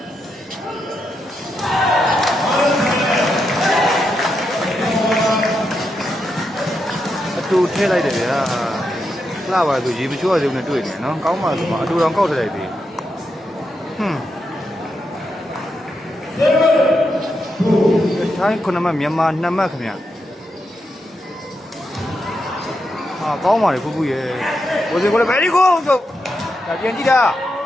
အတူထည့်လိုက်တယ်ဗျာလှပါဆိုရေမချိုးရသေးဘူးနဲ့တွေ့နေနော်ကောင်းပါဆိုမှအတူတောင်ကောက်ထည့်လိုက်သေးထိုင်း9မှတ်မြန်မာ2မှတ်ခင်ဗျာကောင်းပါလေဖူးဖူးရဲ့ကိုစင်ကိုလည်း very good ဆိုဒါပြန်ကြည့်တာ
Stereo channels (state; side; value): normal; both; correlation 0.84